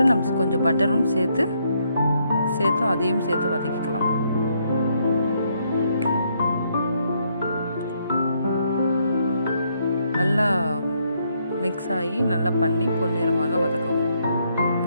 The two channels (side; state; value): both; inverted; correlation -0.74